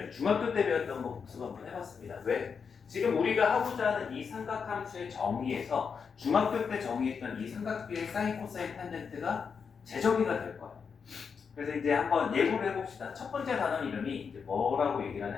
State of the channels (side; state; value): right; quieter; 6.0 dB